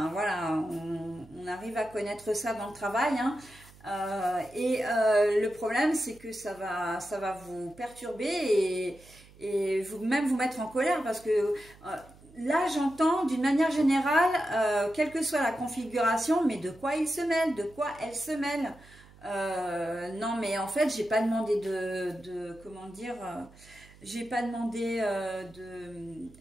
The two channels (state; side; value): noise; right; hum, 23 dB below the sound